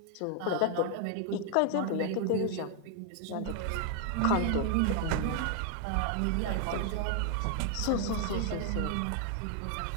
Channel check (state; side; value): different; both; correlation 0.00